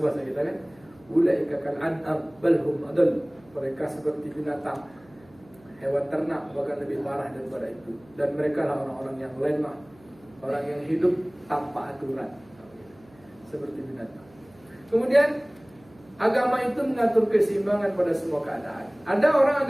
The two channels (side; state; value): right; noise; hum, 27 dB below the sound